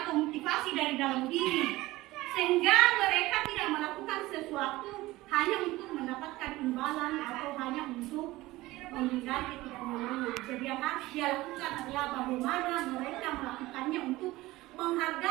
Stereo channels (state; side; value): quieter; left; 18.6 dB